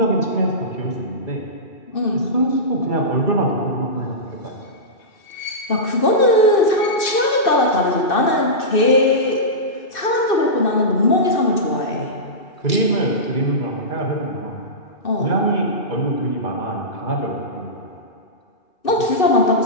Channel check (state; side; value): late; right; 2.6 ms